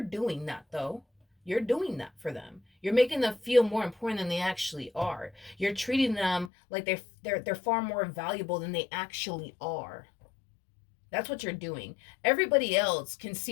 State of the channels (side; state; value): right; drops out; at 6.5 s